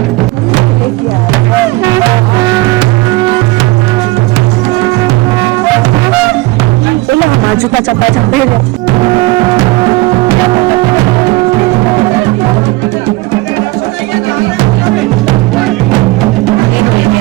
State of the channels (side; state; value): left; quieter; 21.1 dB